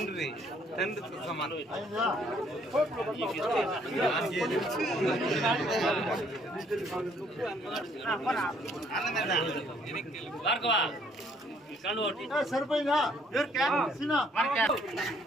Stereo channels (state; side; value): normal; both; correlation 0.65